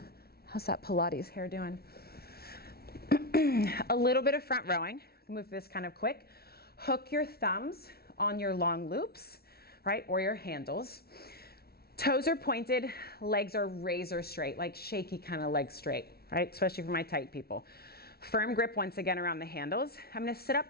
How's that Pilates hair doing? A little bit of front rowing. Move this kind of quick. Hook your thumbs on your long loops, right, or your handles. Toes are pointed, legs are razor straight, like shaky kind of leg straight, right, especially for my tight people. Firm grip once again around the handles. I'm gonna sit up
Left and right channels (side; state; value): right; late; 0.45 ms